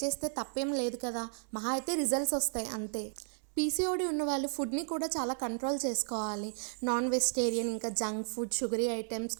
చేస్తే తప్పేం లేదు కదా, మహా అయితే రిజల్ట్స్ వస్తాయి అంతే. పీసీఓడి ఉన్న వాళ్ళు ఫుడ్ని కూడా చాలా కంట్రోల్ చేసుకోవాలి. నాన్ వెజిటేరియన్, ఇంకా junk food, sugary items,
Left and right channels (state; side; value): silent; left; 55 dB below the other